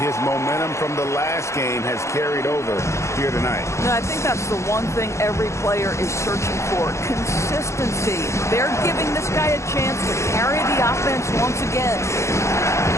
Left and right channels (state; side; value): late; right; 0.14 ms